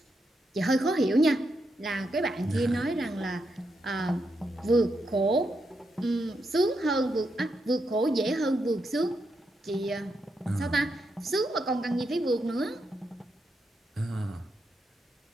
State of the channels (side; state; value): both; normal; correlation 0.83